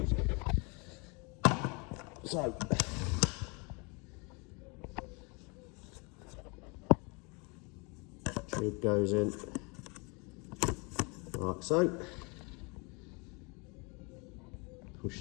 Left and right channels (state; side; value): quieter; right; 30.6 dB